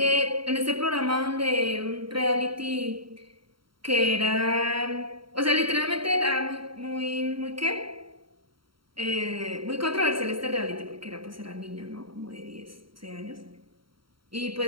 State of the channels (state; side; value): late; left; 0.74 ms